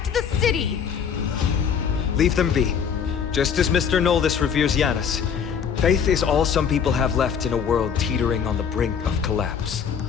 the city! Leave them be. Just as Mr. Noldis reveres Janus, faith is all some people have left in a world teetering on the brink of collapse.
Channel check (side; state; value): right; quieter; 7.3 dB